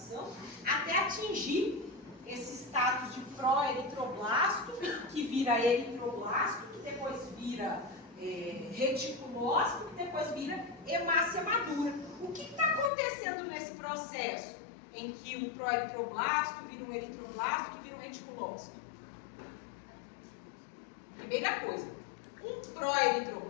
até atingir esse status de pró-eritroblasto, que vira eritroblasto, que depois vira reticulócito, que depois vira hemácia madura. O que está acontecendo nesse processo em que o pró-eritroblasto vira um eritroblasto, que vira um reticulócito? Primeira coisa, um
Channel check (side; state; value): right; drops out; at 12.9 s